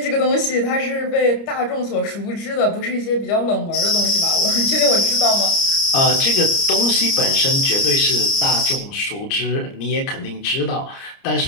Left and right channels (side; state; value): right; late; 30 ms